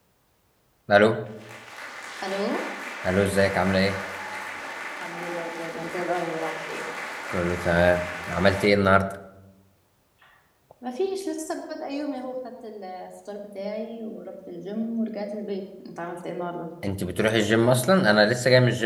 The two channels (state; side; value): identical; both; correlation 1.00